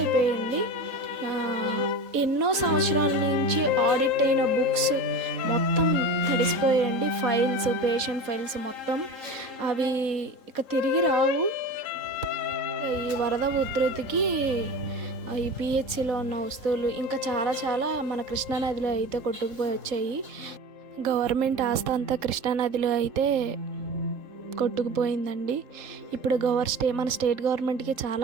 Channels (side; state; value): left; late; 3.8 ms